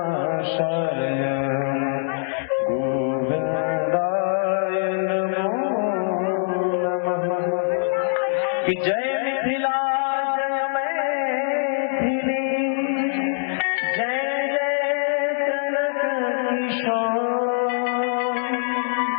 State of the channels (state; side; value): silent; right; digital silence